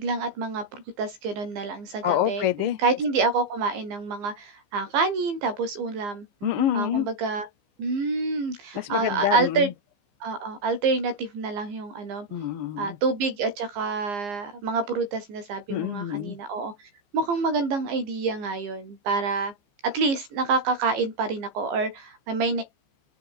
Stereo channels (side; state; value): left; late; 15 ms